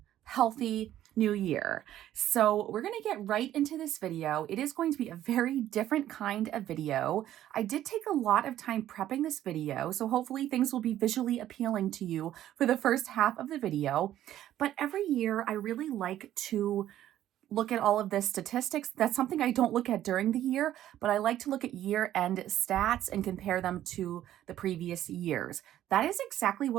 healthy new year. So we're going to get right into this video. It is going to be a very different kind of video. I did take a lot of time prepping this video, so hopefully things will be visually appealing to you for the first half of the video. But every year I really like to look at all of the statistics. That's something I don't look at during the year, but I like to look at year-end stats and compare them to the previous years. That is exactly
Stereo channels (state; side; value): quieter; left; 12.4 dB